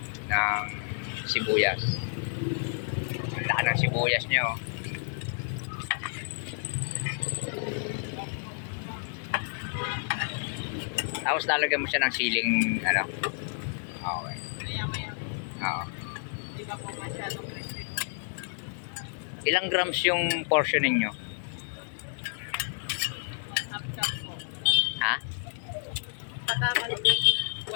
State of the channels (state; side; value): silent; right; digital silence